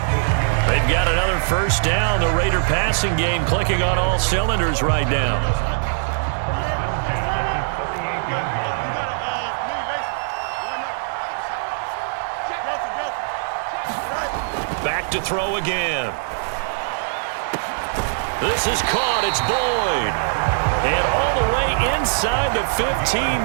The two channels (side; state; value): left; silent; 65 dB below the other